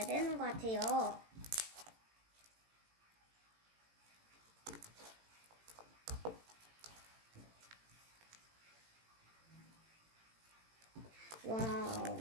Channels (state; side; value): late; left; 18 ms